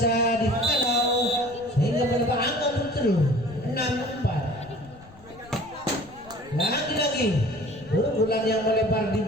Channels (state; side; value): noise; left; rumble, 23 dB below the sound